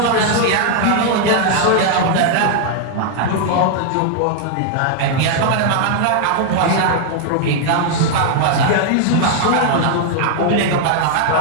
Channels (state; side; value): different; both; correlation 0.00